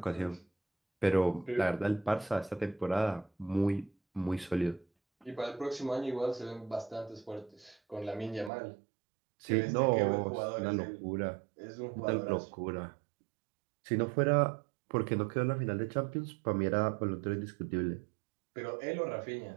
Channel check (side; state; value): left; drops out; at 8.5 s